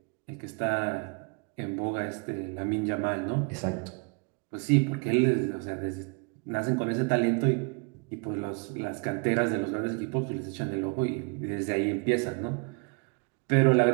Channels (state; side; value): quieter; left; 33.3 dB